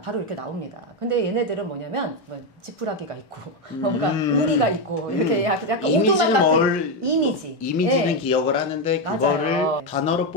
바로 이렇게 나옵니다. 근데 얘네들은 뭐냐면 뭐 지푸라기가 있고 뭔가 우리가 있고 이렇게 약간 이미지는 같은 이미지는 네. 기억을 하는데 그거를 맞아요. 단어로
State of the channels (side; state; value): both; normal; correlation 0.07